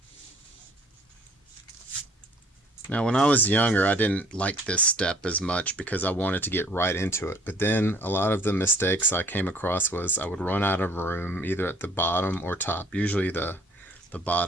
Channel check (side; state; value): both; normal; correlation 0.57